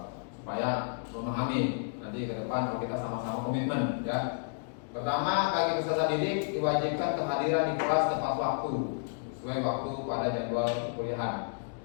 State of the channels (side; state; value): right; silent; digital silence